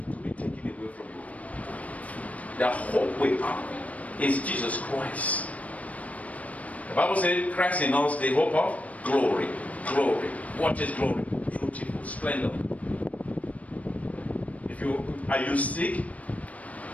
to be taken away from you. The hope we have is Jesus Christ. The Bible says Christ in us, the hope of glory. Glory. What is glory? Beautiful, splendor. Are you sick?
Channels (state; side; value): late; right; 0.068 ms